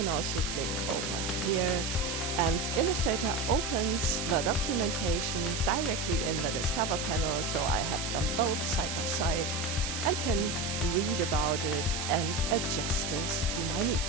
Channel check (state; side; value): noise; right; hiss, 4 dB below the sound